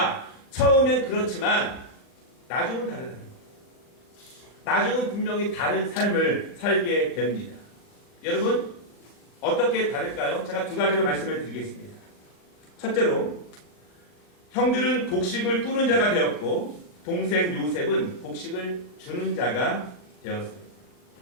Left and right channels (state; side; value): late; right; 39 ms